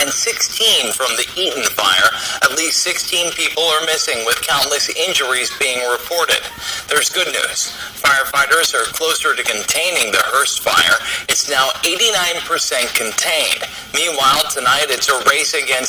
16 from the Eaton fire. At least 16 people are missing, with countless injuries being reported. There's good news. Firefighters are closer to containing the Hearst fire. It's now 89% contained. Meanwhile, tonight it's a race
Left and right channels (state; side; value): identical; both; correlation 1.00